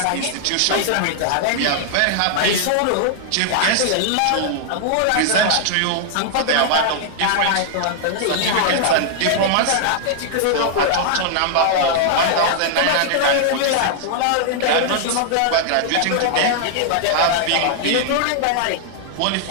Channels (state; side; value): different; both; correlation -0.01